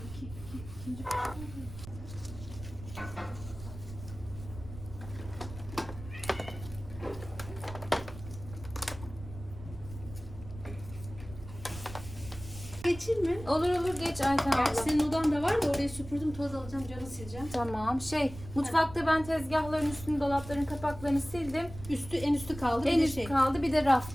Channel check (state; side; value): noise; right; rumble, 13 dB below the sound